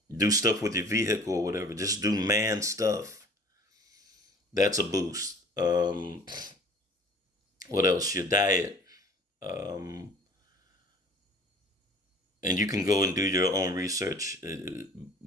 do stuff with your vehicle or whatever. Just do man stuff. That's a boost. What else? Your diet. Um, and you can go and do your own research.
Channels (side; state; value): both; normal; correlation 0.49